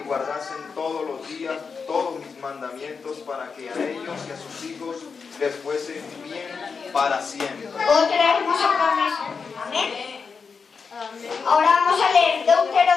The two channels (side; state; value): right; quieter; 5.4 dB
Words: y guardasen todos los días todos mis mandamientos, para que a ellos y a sus hijos les fuese bien para siempre. Otra hermosa promesa. Amén. Ahora vamos a leer